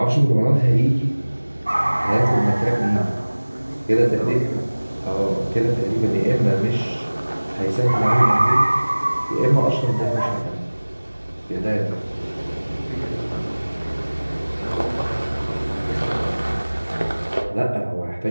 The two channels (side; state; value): both; inverted; correlation -1.00